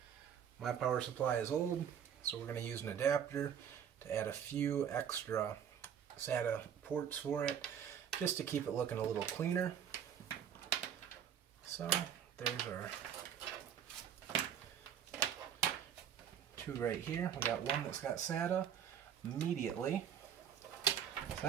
My power supply is old, so we're going to use an adapter to add a few extra SATA ports for it, just to keep it looking a little cleaner. So there's our 2 right here. We got one that's got SATA immediately. So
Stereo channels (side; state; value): left; quieter; 8.7 dB